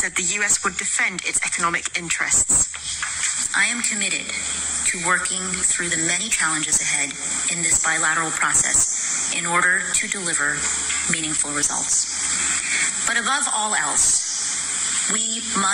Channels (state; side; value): identical; both; correlation 1.00